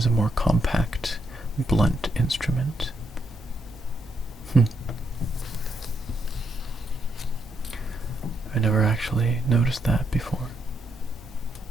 a more compact, blunt instrument. I never actually noticed that before,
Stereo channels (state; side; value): normal; both; correlation 0.77